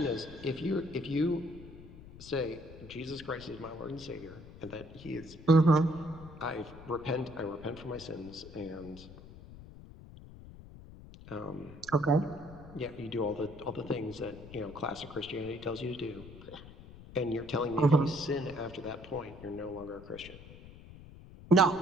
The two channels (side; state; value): left; noise; rumble, 17 dB below the sound